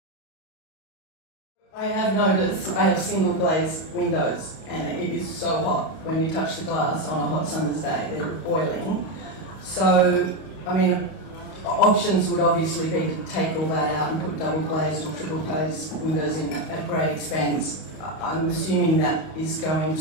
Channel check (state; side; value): late; right; 32 ms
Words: I have noticed I have single glazed windows, and it is so hot when you touch the glass on a hot summer's day. They're boiling. So, I mean, options would obviously be to take all that out and put double glazed or triple glazed windows in at great expense. I'm assuming that is going